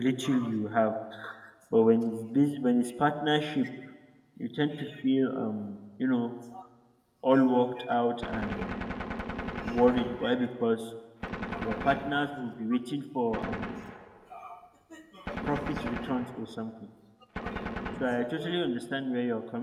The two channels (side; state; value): both; identical; correlation 1.00